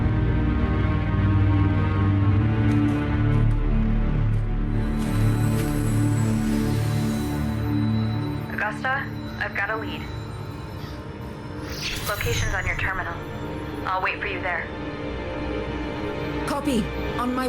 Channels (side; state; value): both; identical; correlation 1.00